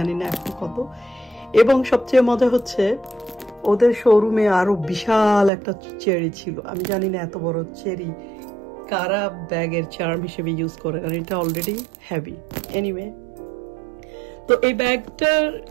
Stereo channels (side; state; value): left; drops out; at 5.5 s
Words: না এখন কত। এবং সবচেয়ে মজা হচ্ছে ওদের শোরুমে আরো বিশাল একটা চেরি ছিল। আমি জানি না এত বড় চেরি কারা ব্যাগের চার্ম হিসেবে ইউজ করে, কারণ এটা অলরেডি হেভি। এনিওয়ে, তো এই ব্যাগটার